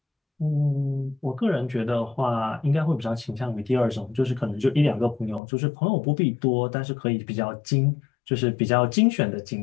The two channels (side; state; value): right; drops out; at 5.4 s